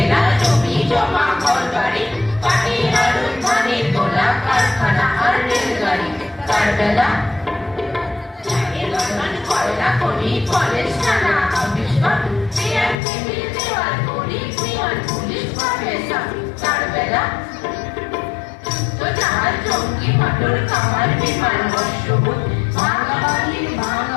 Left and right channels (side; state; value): right; drops out; at 13.0 s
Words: জমি জমা ঘরবাড়ি পাটি আলু ধানে তোলা কারখানা আর রেলগাড়ি তার বেলা কয়লা খনি কলেজ থানা অফিস টিএমসি দেওয়াল করি পিয়ন পুলিশ প্রফেসর তার বেলা তো জাহাজ জঙ্গি মোটর কামার বিমান বর্ষবোধ